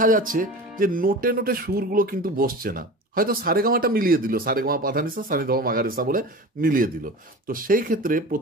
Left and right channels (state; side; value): normal; both; correlation 0.34